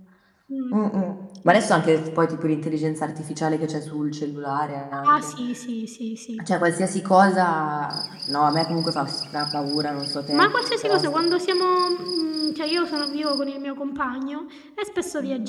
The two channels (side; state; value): both; identical; correlation 1.00